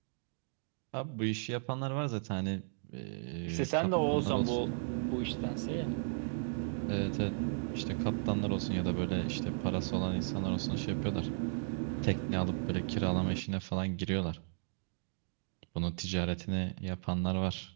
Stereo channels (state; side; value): silent; left; digital silence